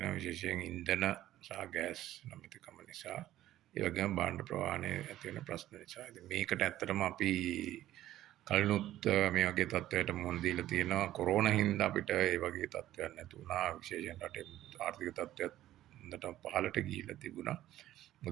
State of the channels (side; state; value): left; quieter; 13.6 dB